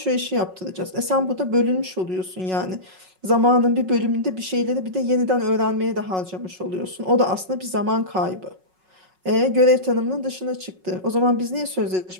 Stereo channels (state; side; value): late; left; 5.4 ms